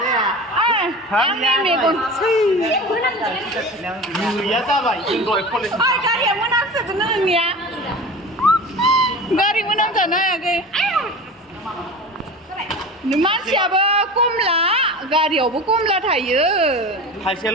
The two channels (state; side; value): normal; both; correlation 0.33